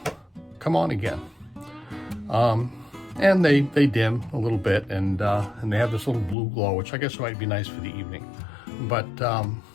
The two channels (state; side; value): drops out; right; at 6.4 s